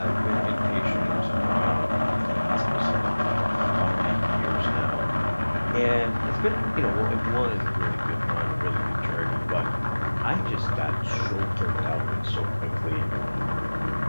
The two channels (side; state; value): both; inverted; correlation -1.00